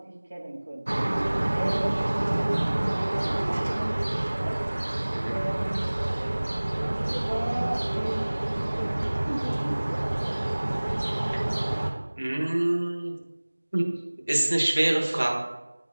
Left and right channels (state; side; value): inverted; both; correlation -1.00